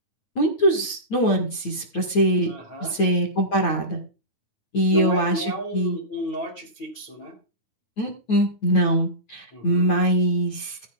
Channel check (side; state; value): right; late; 9.2 ms